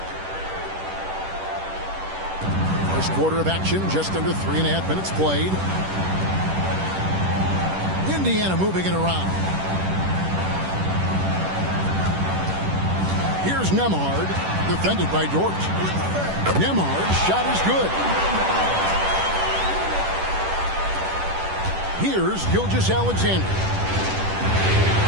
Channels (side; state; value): left; late; 10 ms